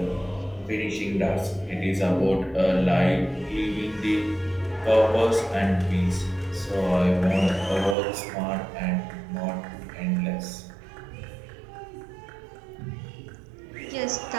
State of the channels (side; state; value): left; drops out; at 8.0 s